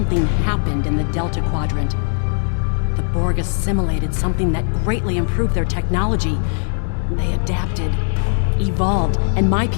happened in the Delta Quadrant. The Borg assimilated something that greatly improved their technology. They adapted, evolved, and my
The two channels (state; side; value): silent; right; digital silence